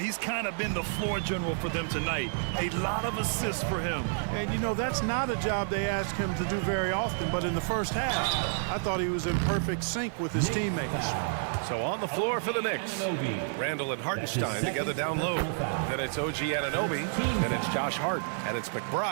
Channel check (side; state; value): left; silent; digital silence